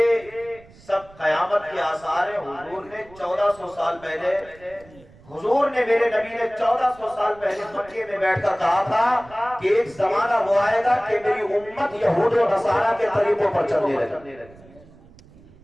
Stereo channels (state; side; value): noise; right; rumble, 24 dB below the sound